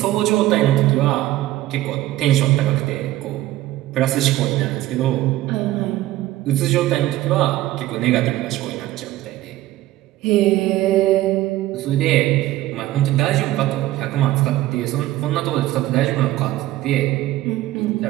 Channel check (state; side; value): quieter; left; 15.5 dB